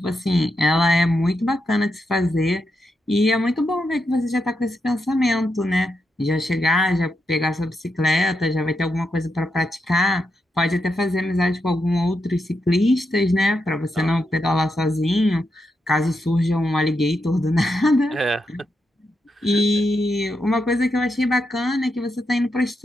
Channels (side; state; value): both; normal; correlation 0.84